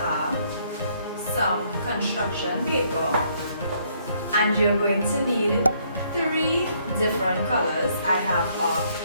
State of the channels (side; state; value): both; inverted; correlation -0.68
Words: some construction paper, and you're going to need 3 different colors. I have a